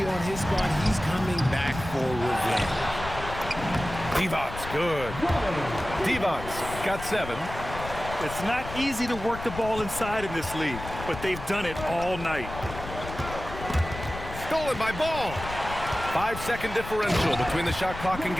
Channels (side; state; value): left; noise; rumble, 10 dB below the sound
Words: on his squad, he's coming back for revenge. Devon's good. Devon's got 7. It's not easy to work the ball inside in this league, but they've done it all night. Stolen by Ball. 5-second differential between the shot clock and